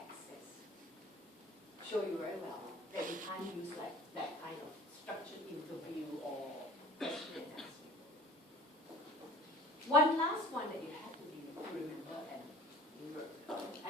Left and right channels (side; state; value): both; normal; correlation 0.47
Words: Show you very well that we can't use like that kind of structured interview or question and answer. One last one that you have to remember